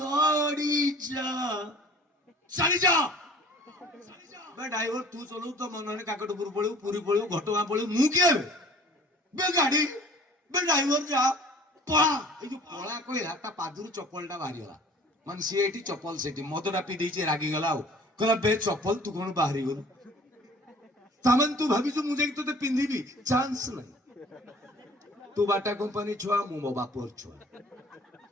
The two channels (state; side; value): normal; both; correlation 0.49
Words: ଯା ଚାଲି ଯା ଡ୍ରାଇଭର ତୁ ଚଲଉ, ତ ମନରେ କାକଟପୁର ପଳେଉ, ପୁରୀ ପଳେଉ, ଘଟଗାଁ ପଳେଉ, ମୁଁ କିଏ ବେ ଗାଡି ବେ ଡ୍ରାଇଭର ଯା ପଳା। ଏଇ ଯୋଉ ପଳା କହିଲା ତା ପାଦରୁ ଚପଲଟା ବାହାରିଗଲା, ମାନେ ସିଏ ଏଠି ଚପଲ ସେଠି, ମଦଟା ପିଇ ଦେଇଛି ରାଗିଗଲା ଆଉ କହିଲା ବେ ଚପଲ ତୁ କଣ ବାହାରିଗଲୁ, ତାମାନେ ତୁ ଭାବିଛୁ ମୁଁ ଯାଇକି ତତେ ପିନ୍ଧିବି, ଚାନ୍ସ ନାହିଁ। ତୁ ବାଟା କମ୍ପାନୀ ଛୁଆ, ମୁଁ ମୋ ବାପର ଛୁଆ।